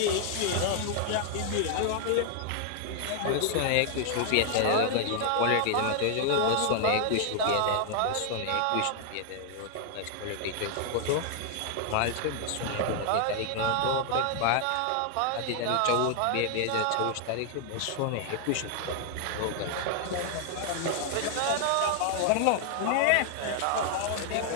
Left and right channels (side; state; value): both; different; correlation 0.00